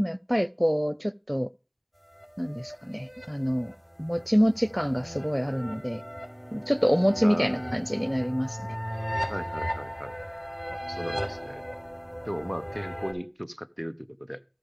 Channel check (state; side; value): identical; both; correlation 1.00